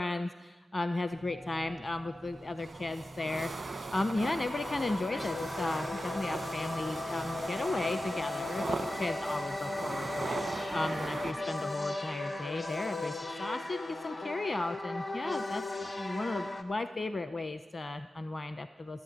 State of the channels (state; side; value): normal; both; correlation 0.93